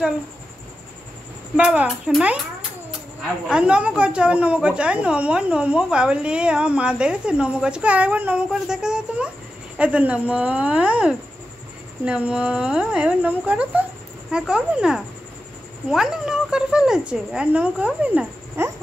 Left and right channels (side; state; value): both; normal; correlation 0.91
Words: চলো বাবা শোনাই আর নমো করছো আবার নমো বাবলি আমার মা দেখেছে নমো করছো আরেকবার নমো করে দেখে দাও তোমার এত নমো এবার নমো করো তো হ্যাঁ করবে না অনেক নমো করে ফেলেছে আর নমো করবে না হ্যাঁ